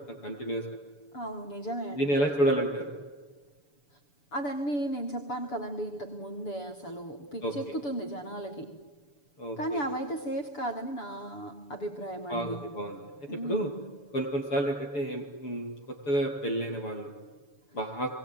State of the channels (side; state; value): right; late; 7.0 ms